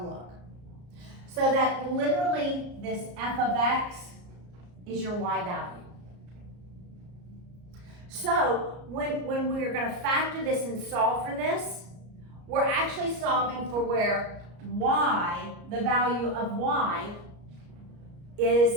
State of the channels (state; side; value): late; left; 34 ms